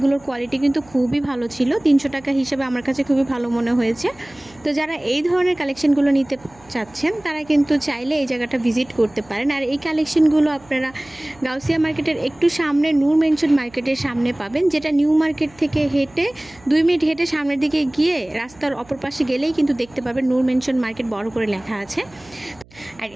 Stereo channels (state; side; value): noise; right; hum, 26 dB below the sound